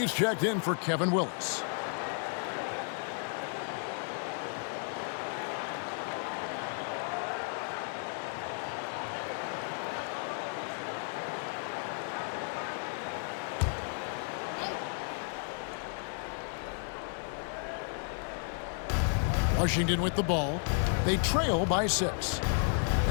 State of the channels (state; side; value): silent; right; 56 dB below the other